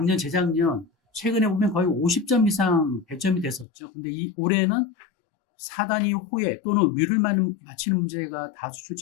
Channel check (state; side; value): drops out; right; at 3.7 s